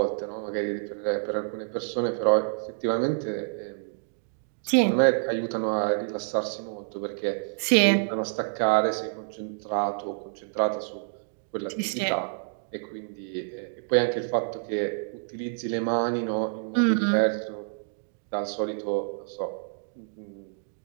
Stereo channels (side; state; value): left; silent; digital silence